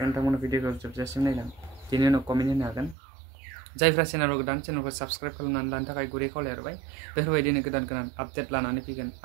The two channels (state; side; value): drops out; left; at 3.0 s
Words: भिडिअखौ जोबजासिम नायलां बेनि उनाव कमेन्ट होनो हागोन जायफ्रा चेनेलाव गोदान चेनेलखौ साबस्क्राइब खालामनानै लानो थाखाय गुरै खावलायहरबाय बेफोरबायदिनो गोदान आपडेट लानानै फैगोन